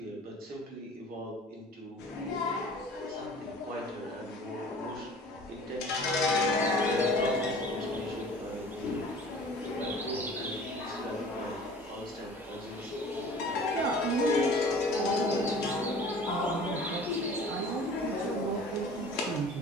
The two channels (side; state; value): both; normal; correlation 0.45